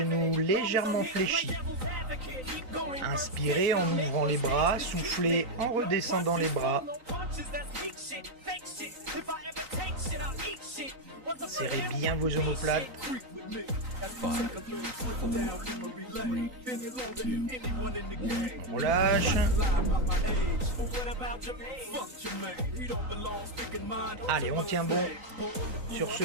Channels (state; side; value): late; left; 3.9 ms